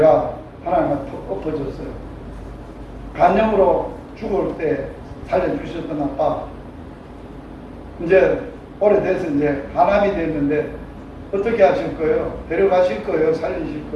하나님한테 엎어졌어요. 간염으로 죽을 때 살려주셨던 아빠, 이제 오래돼서 이제 간암이 됐는데 어떻게 하실 거예요? 데려가실 거예요? 살리실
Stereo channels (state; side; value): identical; both; correlation 1.00